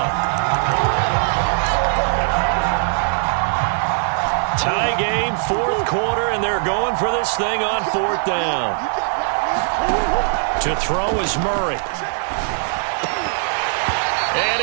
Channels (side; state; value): left; silent; digital silence